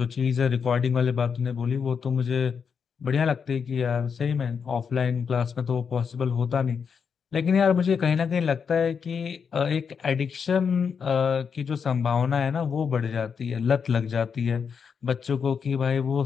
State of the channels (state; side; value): quieter; right; 6.4 dB